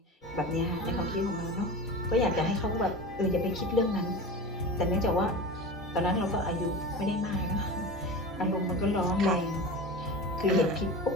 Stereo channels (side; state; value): both; normal; correlation 0.30